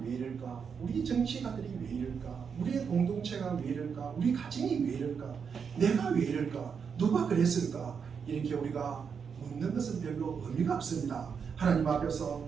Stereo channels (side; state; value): left; quieter; 6.4 dB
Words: 이럴까? 우리 정치가들이 왜 이럴까? 우리의 공동체가 왜 이럴까? 우리 가정이 왜 이럴까? 내가 왜 이럴까? 누가 그랬을까? 이렇게 우리가 묻는 것은 별로 의미가 없습니다. 하나님 앞에서